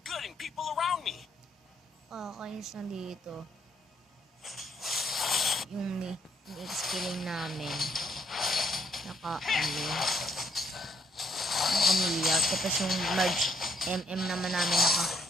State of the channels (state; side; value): normal; both; correlation 0.71